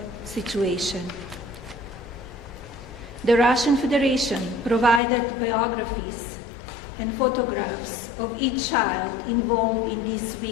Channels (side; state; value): right; drops out; at 5.0 s